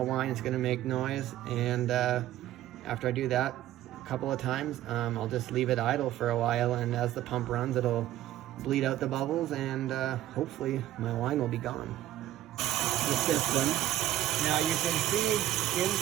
whine, it's gonna make noise, and after I do that a couple of times, I'll just leave it idle for a while, and as the pump runs, it'll bleed out the bubbles, and hopefully my wine will be gone. The system. Now you can see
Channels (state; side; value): quieter; left; 13.4 dB